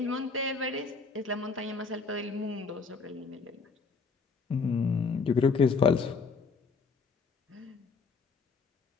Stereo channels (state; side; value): quieter; right; 4.7 dB